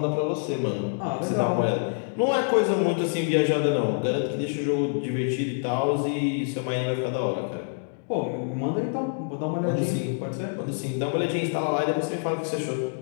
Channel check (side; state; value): right; silent; digital silence